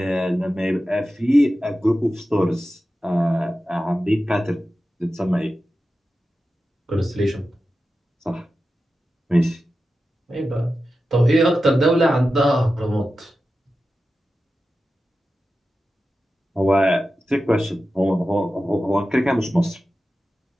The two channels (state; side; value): normal; both; correlation 0.93